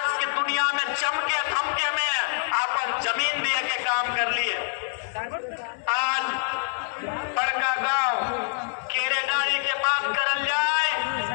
के दुनिया में चमके धमके में अपन जमीन दिए के काम कर लिए। आज बड़का गांव केरेडारी के बात करल जाए,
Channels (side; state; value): right; silent; digital silence